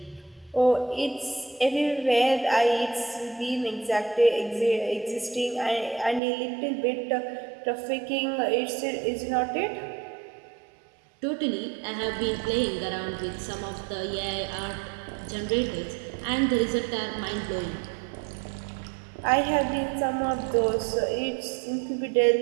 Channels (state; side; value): drops out; left; at 6.2 s